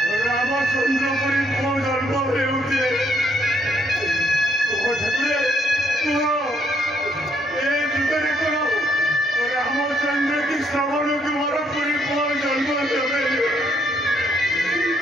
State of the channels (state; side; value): normal; both; correlation 0.71